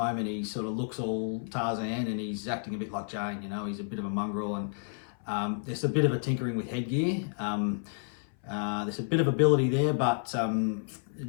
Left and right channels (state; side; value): silent; right; 57 dB below the other